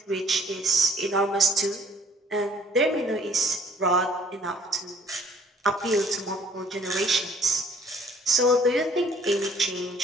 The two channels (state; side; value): normal; both; correlation 0.57